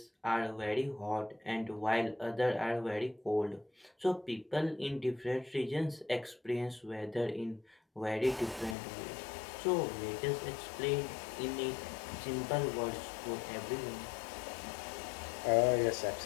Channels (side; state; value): right; drops out; at 8.8 s